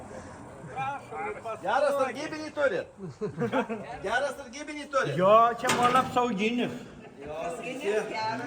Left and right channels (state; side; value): identical; both; correlation 1.00